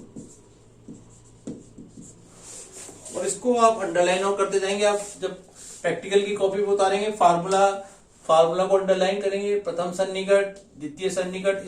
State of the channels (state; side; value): identical; both; correlation 1.00